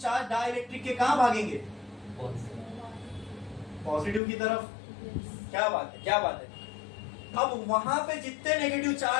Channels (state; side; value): drops out; right; at 4.2 s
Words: डाइलेक्ट्रिक के कहाँ भागेंगे? पॉजिटिव की तरफ। क्या बात है, क्या बात है? अब वहां पे जितने नेगेटिव